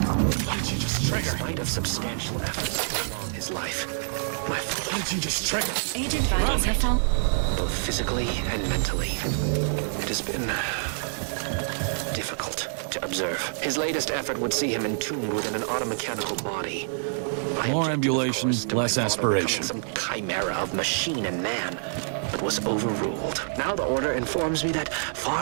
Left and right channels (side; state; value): left; silent; digital silence